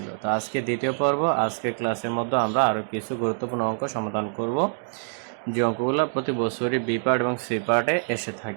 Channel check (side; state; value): left; silent; digital silence